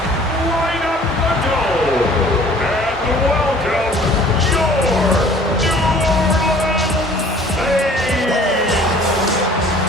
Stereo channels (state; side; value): normal; both; correlation 0.51